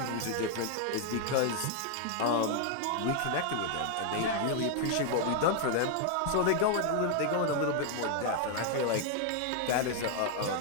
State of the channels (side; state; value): both; different; correlation 0.00